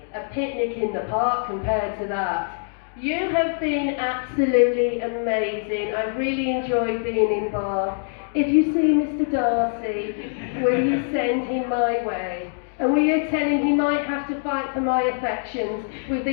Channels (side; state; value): right; silent; digital silence